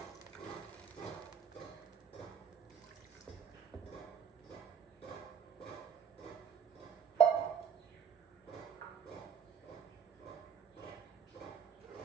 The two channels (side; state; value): left; quieter; 6.9 dB